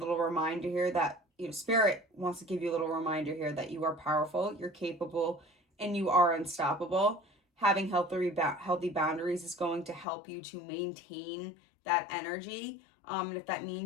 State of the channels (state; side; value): drops out; right; at 10.1 s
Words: reminder here that, spirit wants to give you a little reminder here that you are powerful, you're capable, and you are unstoppable. Having healthy boundaries is going to help you to maintain that energy. And if that